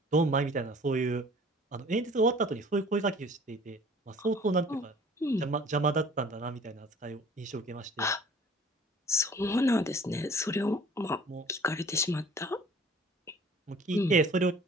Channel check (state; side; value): normal; both; correlation 0.50